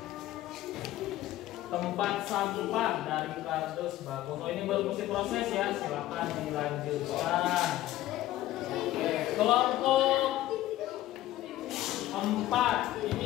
Tempat sampah dari kardus bagus. Oh, ini baru mesti proses ya. Silakan dilanjutkan. Oke, kelompok 4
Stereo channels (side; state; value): right; quieter; 14.7 dB